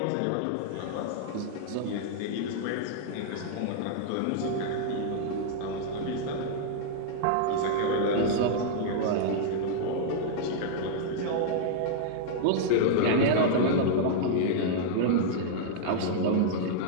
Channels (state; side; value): different; both; correlation -0.01